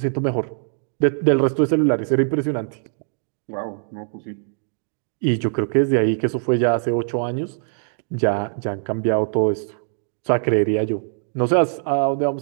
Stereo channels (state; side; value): silent; left; 63 dB below the other